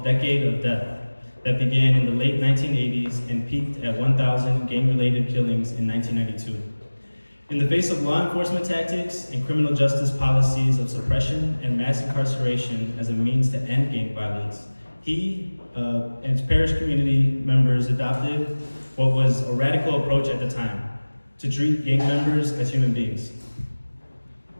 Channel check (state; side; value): inverted; both; correlation -1.00